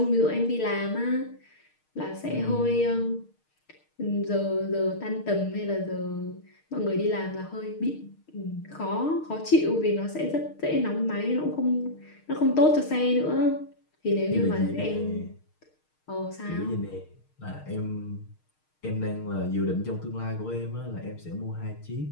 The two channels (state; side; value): late; right; 6.5 ms